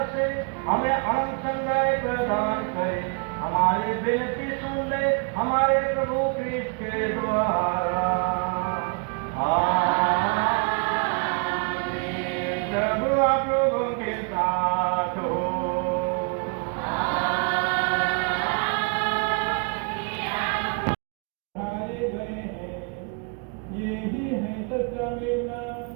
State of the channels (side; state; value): left; quieter; 36.7 dB